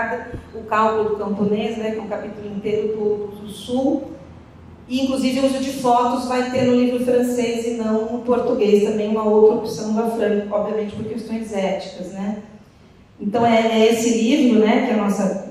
o cálculo do camponês, né? Que é um capítulo inteiro do Sul, e inclusive o uso de fotos vai ter no livro francês e não no português, também uma outra opção da Fran, obviamente por questões éticas, né? Então é esse livro, né, que é a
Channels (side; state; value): both; identical; correlation 1.00